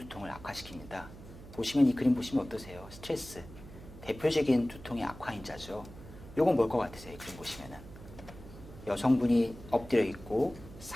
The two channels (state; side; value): noise; right; hum, 16 dB below the sound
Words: 악화시킵니다. 보시면 이 그림 보시면 어떠세요? 스트레스, 대표적인 두통의 악화인자죠. 요건 뭘 것 같으세요? 이 그림 보시면은 여성분이 엎드려 있고